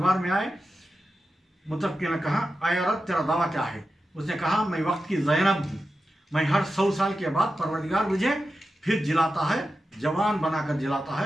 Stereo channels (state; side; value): normal; both; correlation 0.91